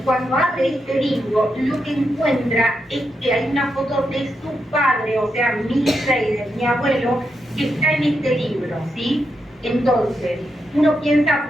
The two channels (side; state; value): both; normal; correlation 0.84